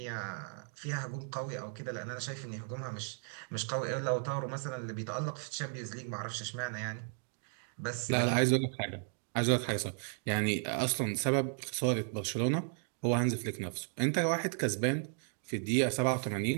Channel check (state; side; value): silent; left; 55 dB below the other